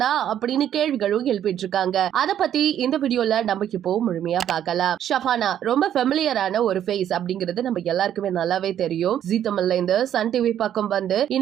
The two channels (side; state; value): left; quieter; 10.4 dB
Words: அப்படின்னு கேள்விகளும் எழுப்பிட்டு இருக்காங்க. அத பத்தி இந்த வீடியோல நம்ம இப்போ முழுமையா பார்க்கலாம். ஷஃபானா ரொம்ப ஃபெமிலியரான ஒரு ஃபேஸ் அப்படிங்கிறது நம்ம எல்லாருக்குமே நல்லாவே தெரியும். ஜீ தமிழ்ல இந்த சன் டிவி பக்கம் வந்து